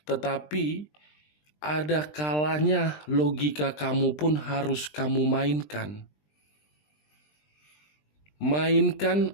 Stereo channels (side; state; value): right; late; 20 ms